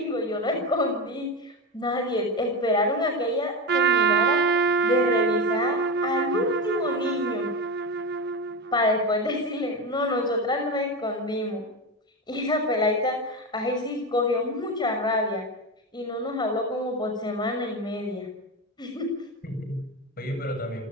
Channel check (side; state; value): both; normal; correlation 0.18